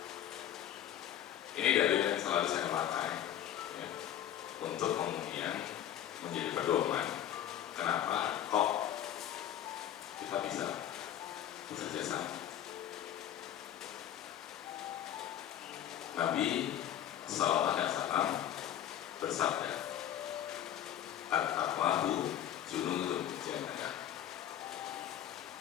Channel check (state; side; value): quieter; right; 11.0 dB